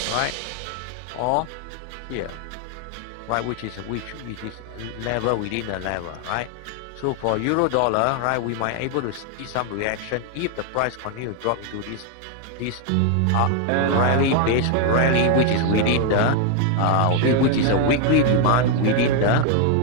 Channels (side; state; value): both; different; correlation 0.01